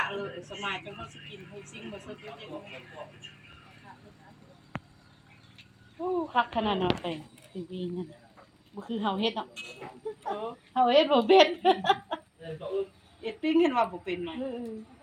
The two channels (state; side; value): identical; both; correlation 1.00